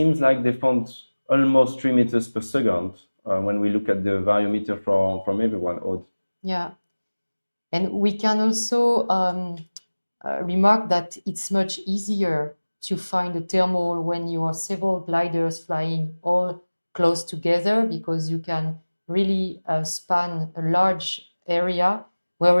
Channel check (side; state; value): both; inverted; correlation -1.00